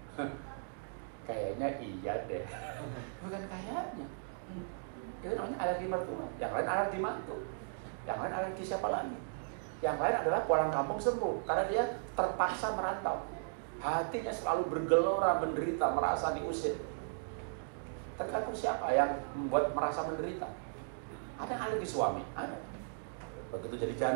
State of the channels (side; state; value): left; silent; digital silence